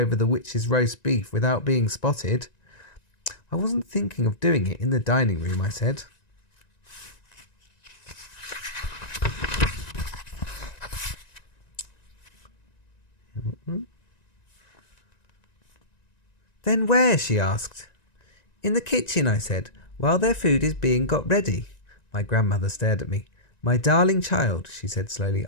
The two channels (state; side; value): late; right; 1.9 ms